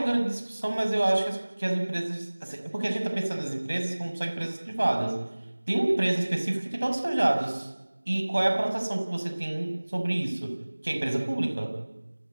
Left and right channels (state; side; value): inverted; both; correlation -1.00